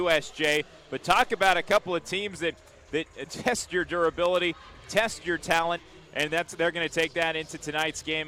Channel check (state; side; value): identical; both; correlation 1.00